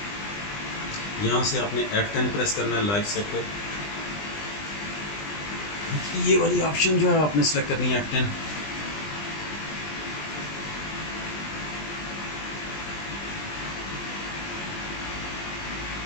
यहाँ से आपने F10 प्रेस करना है, लाइव सेक्टर। ये वाली ऑप्शन जो है आपने सेलेक्ट करनी है F10।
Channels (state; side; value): late; right; 20 ms